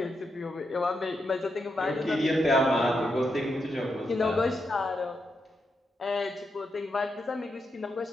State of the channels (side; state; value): both; normal; correlation 0.83